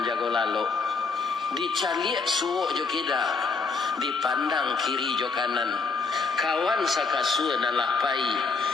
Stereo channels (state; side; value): quieter; right; 4.4 dB